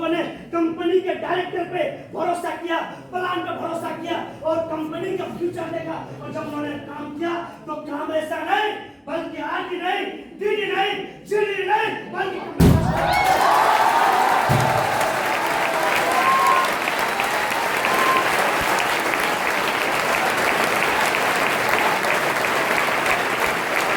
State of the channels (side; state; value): both; identical; correlation 1.00